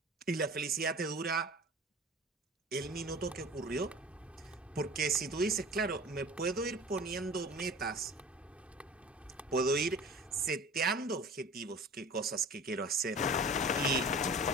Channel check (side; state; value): both; normal; correlation 0.41